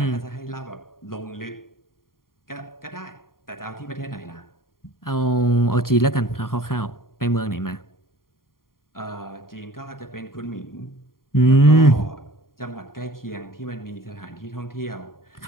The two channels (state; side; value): late; right; 0.91 ms